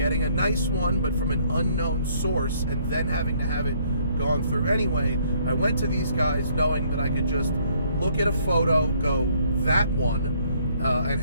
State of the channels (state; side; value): inverted; both; correlation -0.65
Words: a nice one, but from an unknown source, and then having to have it gone through anyway, I went to these guys knowing that I could just look at a photo, go, that one, and